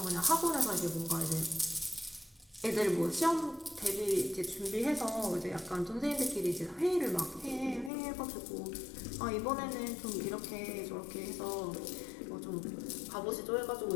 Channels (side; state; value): right; drops out; at 7.9 s